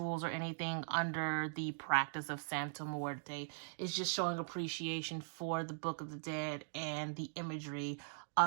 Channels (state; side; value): silent; left; digital silence